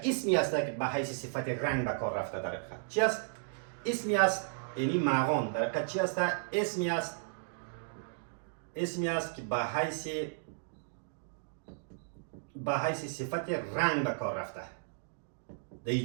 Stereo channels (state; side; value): silent; left; digital silence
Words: اسمی است که به حیث صفت رنگ به کار رفته. در حقیقت چی است؟ اسمی است یعنی مغان در حقیقت چی است؟ اسمی است که به حیث صفت رنگ به کار رفته در این